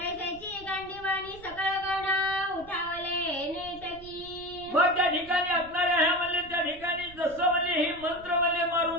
गांडीवाणी सकळ गण उठावले नेटकी. मग त्या ठिकाणी असणाऱ्या ह्या म्हणले त्या ठिकाणी जसं म्हणले ही मंत्र म्हणले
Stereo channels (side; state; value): right; noise; rumble, 20 dB below the sound